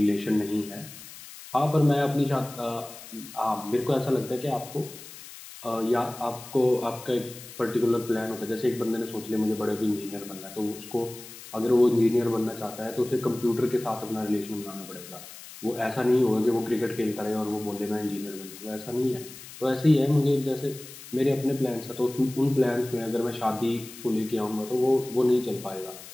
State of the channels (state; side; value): noise; left; hiss, 15 dB below the sound